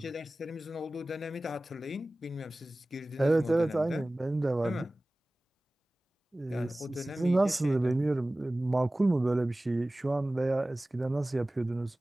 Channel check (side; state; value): both; normal; correlation 0.97